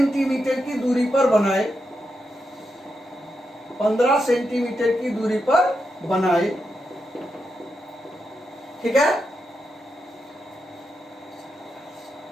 की दूरी पर बनाए, 15 सेंटीमीटर की दूरी पर बनाए। ठीक है,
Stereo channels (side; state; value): both; normal; correlation 0.85